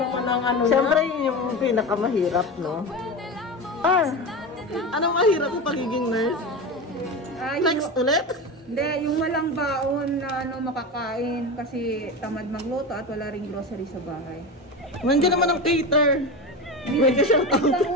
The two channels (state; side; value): normal; both; correlation 0.23